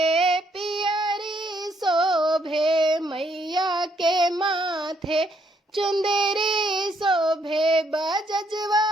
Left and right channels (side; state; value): both; normal; correlation 0.71